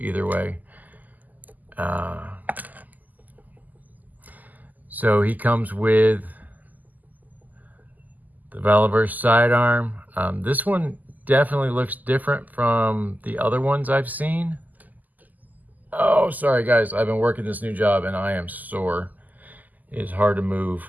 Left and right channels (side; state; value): left; late; 0.082 ms